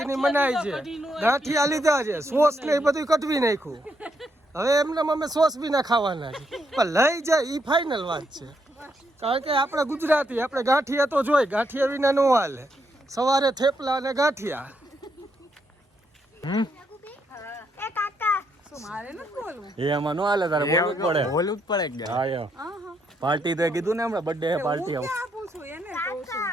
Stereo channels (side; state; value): both; normal; correlation 0.77